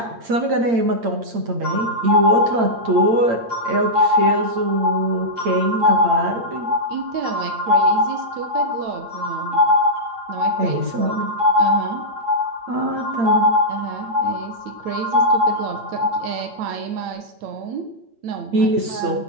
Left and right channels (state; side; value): late; left; 8.7 ms